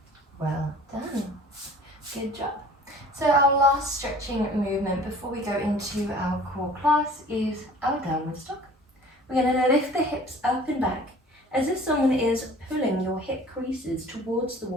Well done. Good job. So our last stretching movement before we go into our core class is our downward dog. We're going to lift the hips up and back as if someone is pulling your hip creases towards the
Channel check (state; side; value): normal; both; correlation 0.48